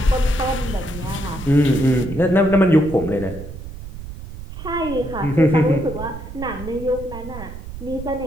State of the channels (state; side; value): noise; right; rumble, 12 dB below the sound